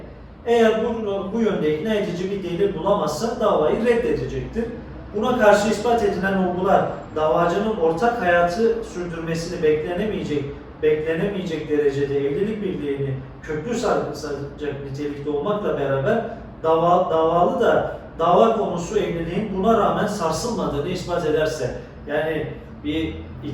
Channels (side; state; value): both; identical; correlation 1.00